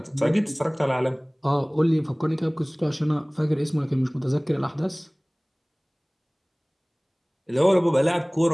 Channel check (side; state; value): both; identical; correlation 1.00